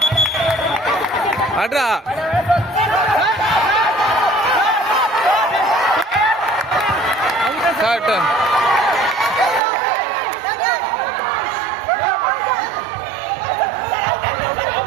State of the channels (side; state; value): left; drops out; at 9.6 s